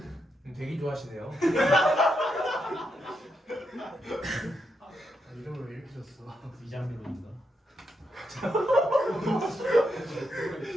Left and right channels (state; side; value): normal; both; correlation 0.82